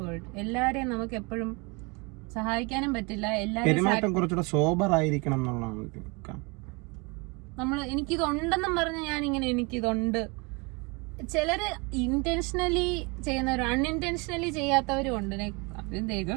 world. എല്ലാരെയും നമുക്ക് എപ്പോഴും സഹായിക്കാനും പറ്റില്ല. പെരുമാറ്റം കുറച്ചുകൂടെ സോബർ ആയിരിക്കണം എന്നുള്ളതാണ്. നമ്മള് എനിക്കിതുണ്ടെന്നും പറഞ്ഞ് ഞാൻ ഇങ്ങനെ എനിക്കിതുണ്ട്. ചിലര് ഇന്റൻഷനലി ചെയ്യുന്നവരും അൺഇന്റൻഷനലി ചെയ്യാത്തവരും ഉണ്ട്.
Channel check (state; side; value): quieter; left; 29.0 dB